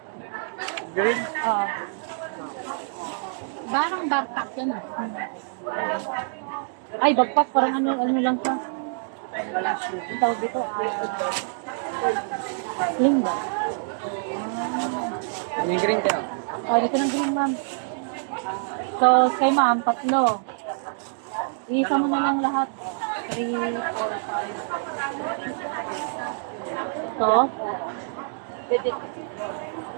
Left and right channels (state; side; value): silent; left; digital silence